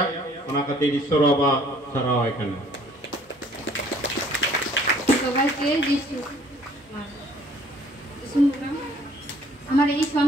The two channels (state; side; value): normal; both; correlation 0.58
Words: ओना खातिर ईश्वर बाबा सरावाय कना সবাইকে যিশু আমার এই